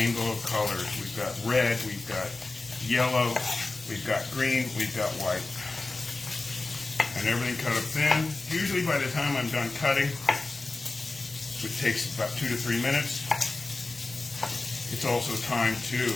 of colors. We've got red, we've got yellow, we've got green, we've got white. And everything cut up thin. Usually by the time I'm done cutting, which takes about 2 to 3 minutes, it's also time to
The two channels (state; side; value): quieter; right; 3.4 dB